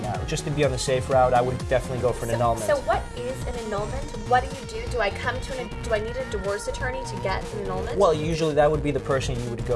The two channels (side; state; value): both; identical; correlation 1.00